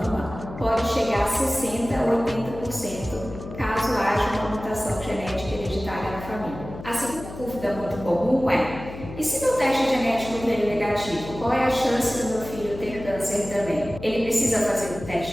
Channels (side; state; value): left; noise; hum, 12 dB below the sound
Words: pode chegar a 60% a 80% caso haja uma mutação genética hereditária na família. A segunda dúvida muito comum é: e se meu teste genético veio negativo, qual é a chance do meu filho ter câncer também? Ele precisa fazer um